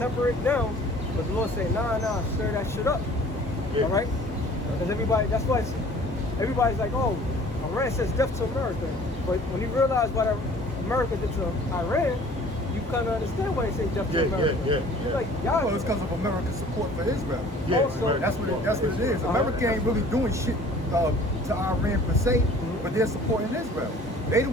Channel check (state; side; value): normal; both; correlation 0.50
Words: it down, but the Lord say, nah, stir that shit up. Yeah. All right? Because that's why everybody's like, oh, Iran says death to America. But when you realize what America did to Iran, you kind of understand why they say death to America. Yeah. You're like, y'all. Well, it's because of America's support for Israel. Yeah, Also, That's what it is. America ain't really doing shit to Iran per se, but they're supporting Israel. They the